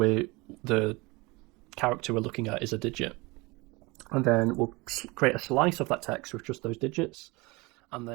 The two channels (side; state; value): left; quieter; 24.8 dB